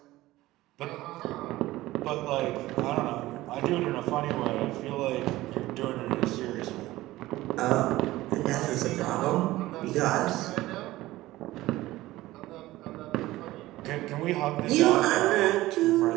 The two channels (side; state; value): left; quieter; 17.2 dB